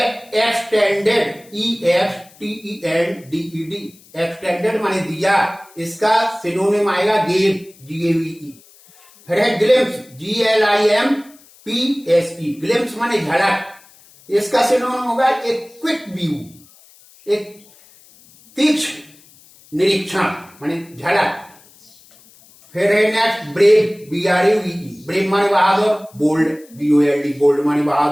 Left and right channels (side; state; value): left; noise; hiss, 26 dB below the sound